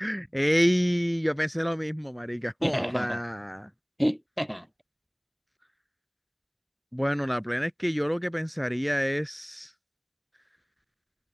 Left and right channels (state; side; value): identical; both; correlation 1.00